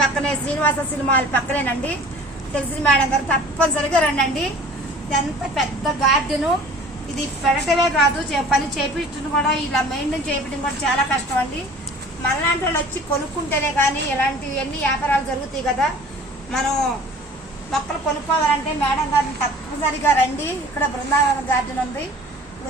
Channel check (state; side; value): normal; both; correlation 0.46